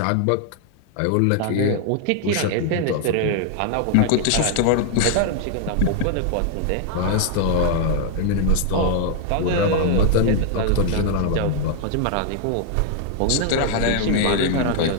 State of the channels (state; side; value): different; both; correlation 0.00